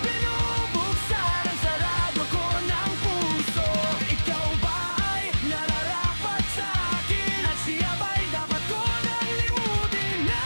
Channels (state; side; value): inverted; both; correlation -1.00